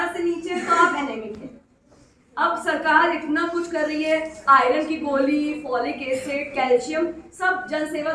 से नीचे है तो आप एनेमिक हैं। अब सरकार इतना कुछ कर रही है, आयरन की गोली, फॉलिक एसिड, कैल्शियम सब जन सेवा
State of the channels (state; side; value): identical; both; correlation 1.00